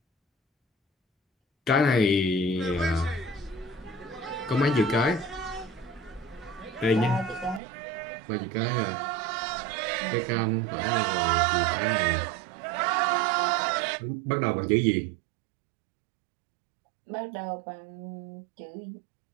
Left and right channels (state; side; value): drops out; left; at 7.6 s